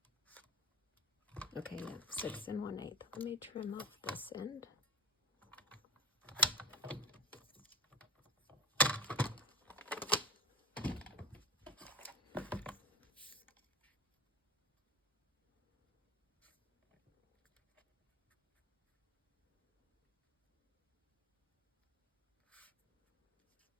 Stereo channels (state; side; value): normal; both; correlation 0.27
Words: Okay, yeah, 6 1/8. Let me trim off this end.